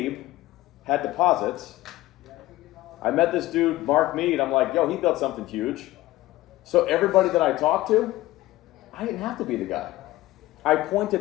had deposits. I met this dude, Mark Mead. I'm like, yo, he built something huge. So everybody that I talked to, I didn't have to be the guy. I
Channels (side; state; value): right; quieter; 17.0 dB